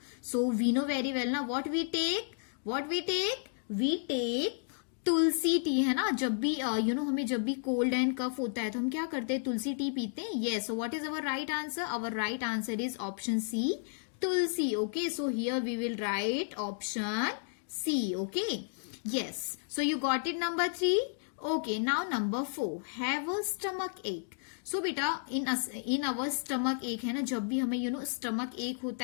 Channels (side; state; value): right; silent; digital silence